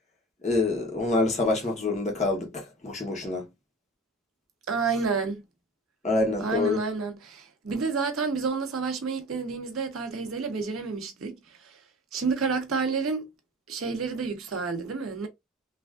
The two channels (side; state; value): both; normal; correlation 0.38